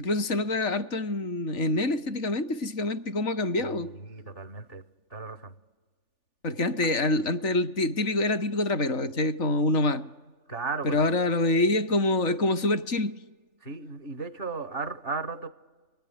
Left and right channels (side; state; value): right; late; 3.4 ms